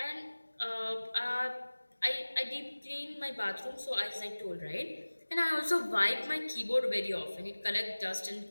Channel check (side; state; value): both; inverted; correlation -1.00